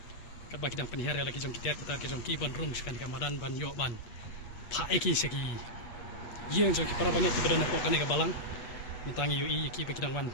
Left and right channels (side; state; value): right; late; 8.4 ms